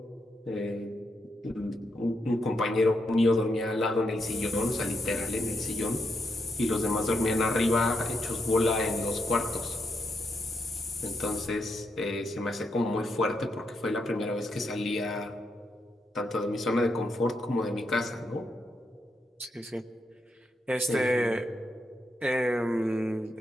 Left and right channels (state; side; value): normal; both; correlation 0.81